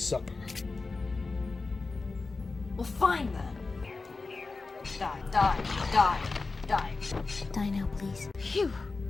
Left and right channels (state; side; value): quieter; right; 3.9 dB